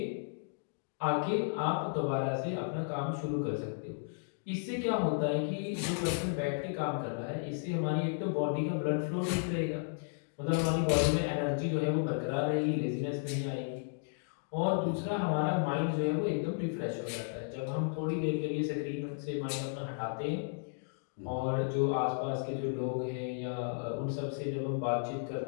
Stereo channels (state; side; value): silent; right; digital silence